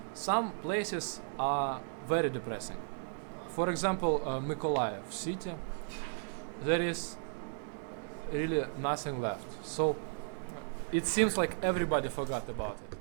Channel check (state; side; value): silent; left; digital silence